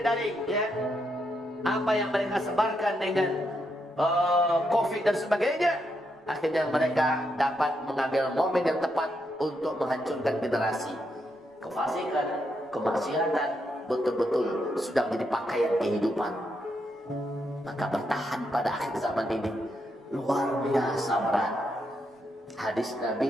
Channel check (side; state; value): both; normal; correlation 0.80